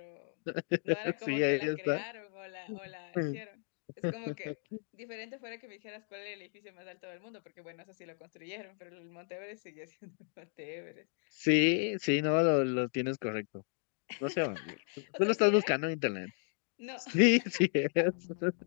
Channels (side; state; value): right; silent; 55 dB below the other